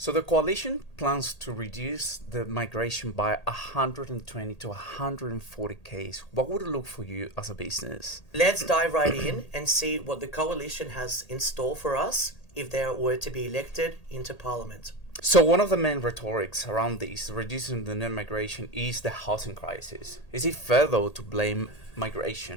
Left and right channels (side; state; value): right; late; 1.8 ms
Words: So the coalition plans to reduce the migration by 120 to 140 Ks. What would it look for you as a business? Let's dive right in and see what the coalition has in store for us if they were to be elected into parliament. So one of the main rhetorics around this, reducing the net migration, is the housing crisis. Is it fair though to blame